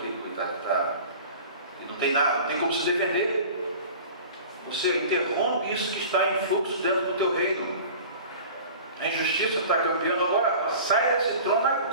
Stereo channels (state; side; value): inverted; both; correlation -0.40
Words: que e não tem nada, não tem como se defender. Você interrompe isso que está em fluxo dentro do teu reino. A injustiça está campeando agora. Sai desse trono